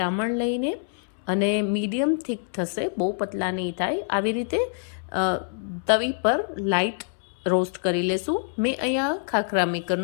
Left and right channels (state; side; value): silent; right; 60 dB below the other